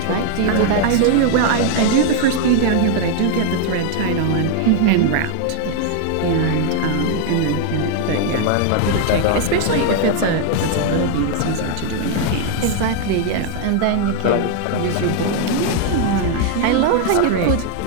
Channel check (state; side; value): different; both; correlation 0.00